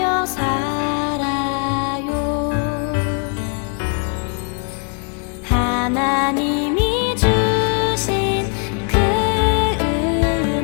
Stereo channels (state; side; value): quieter; right; 39.8 dB